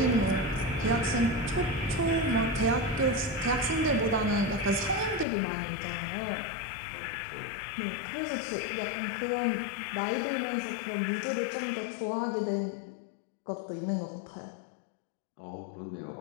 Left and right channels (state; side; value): drops out; right; at 5.2 s